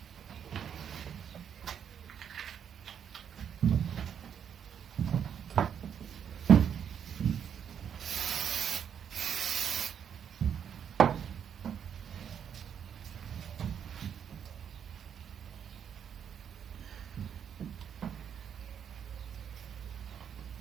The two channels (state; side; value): quieter; left; 8.3 dB